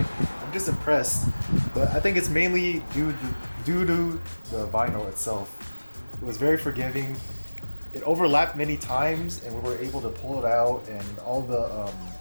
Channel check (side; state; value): both; inverted; correlation -1.00